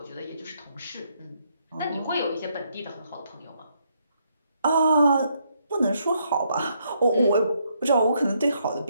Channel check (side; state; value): both; inverted; correlation -0.74